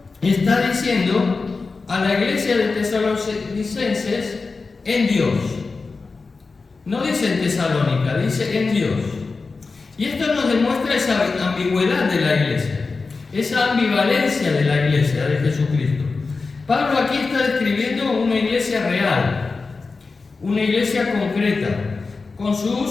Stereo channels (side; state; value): right; quieter; 4.2 dB